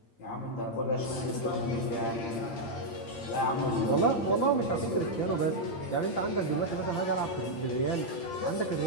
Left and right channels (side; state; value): right; late; 8.7 ms